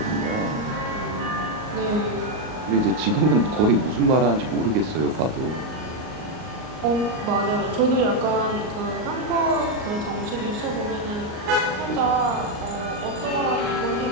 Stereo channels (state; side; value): late; left; 38 ms